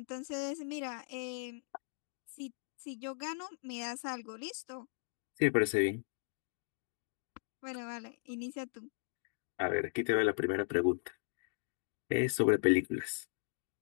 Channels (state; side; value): silent; right; digital silence